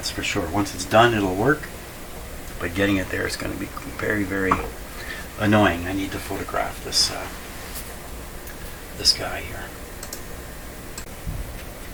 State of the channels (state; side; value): identical; both; correlation 1.00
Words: for sure. Once it's done, it'll work. But getting it there is going to be very, very annoying. I need to photograph this this guy here.